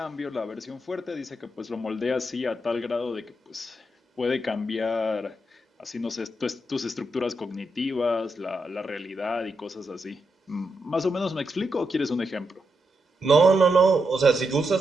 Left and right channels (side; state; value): both; normal; correlation 0.83